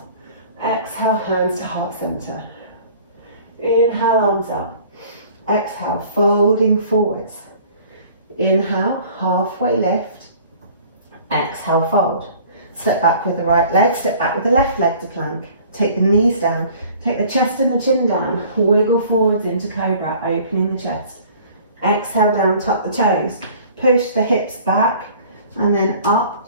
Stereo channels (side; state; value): both; inverted; correlation -0.50